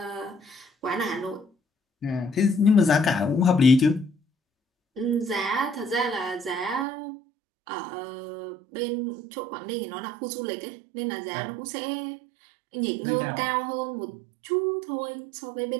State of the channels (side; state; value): left; drops out; at 6.9 s